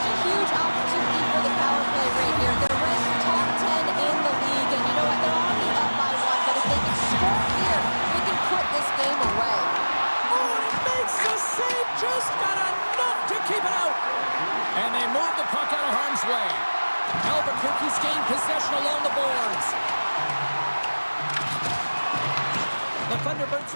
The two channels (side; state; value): both; inverted; correlation -1.00